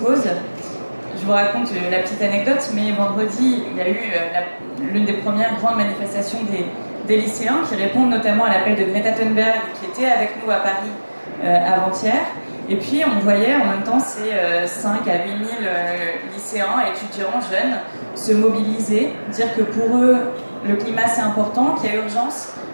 Je vous raconte la petite anecdote, mais vendredi, il y a eu l'une des premières grandes manifestations des lycéens qui répondent notamment à l'appel de Greta Thunberg, qui était avec nous à Paris avant-hier. Et puis on voyait en même temps ces 5 à 8 000 lycéens, étudiants, jeunes, se mobiliser, dire que pour eux, le climat c'est important, qu'il y a urgence,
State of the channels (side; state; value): both; inverted; correlation -1.00